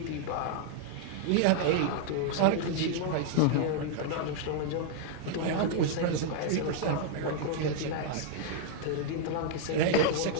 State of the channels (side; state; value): both; different; correlation -0.01